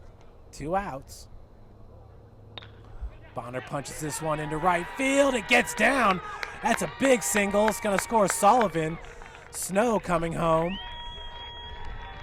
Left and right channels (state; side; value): identical; both; correlation 1.00